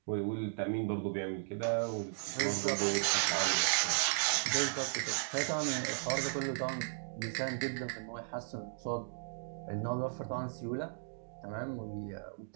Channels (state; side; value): silent; left; digital silence